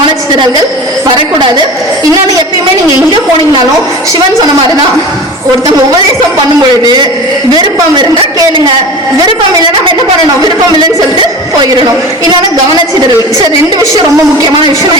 வரக்கூடாது. இன்னொன்னு, எப்பயுமே நீங்க எங்க போனீங்கனாலும் சிவன் சொன்ன மாதிரிதான், ஒருத்தவங்க உபதேசம் பண்ணும் பொழுது விருப்பம் இருந்தா கேளுங்க, விருப்பம் இல்லை நம்ம என்ன பண்ணணும், விருப்பம் இல்லைன்னு சொல்லிட்டு போயிடணும். இன்னொன்னு கவனச்சிதறல். சரி, ரெண்டு விஷயம் ரொம்ப முக்கியமான விஷயம்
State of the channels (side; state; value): both; normal; correlation 0.34